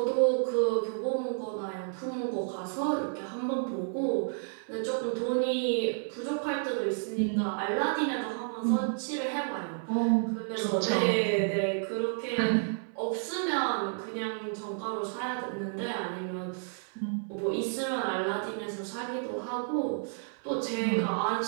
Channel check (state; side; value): silent; left; 57 dB below the other